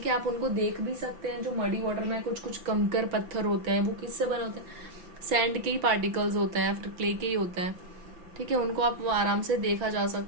है। आप उनको देख भी सकते हैं, जो मडी वाटर में कुछ कुछ कंकर पत्थर होते हैं, वो किससे बने होते हैं, सैंड के ही पार्टिकल्स होते हैं, फिर क्ले के ही होते हैं, ठीक है, उनको आप आराम से देखा जा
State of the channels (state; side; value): late; left; 5.8 ms